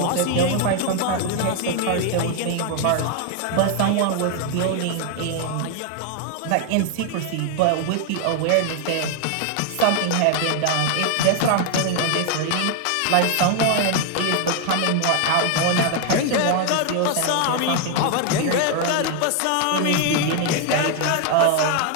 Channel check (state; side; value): different; both; correlation 0.00